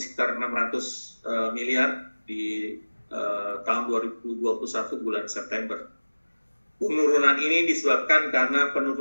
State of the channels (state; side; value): inverted; both; correlation -1.00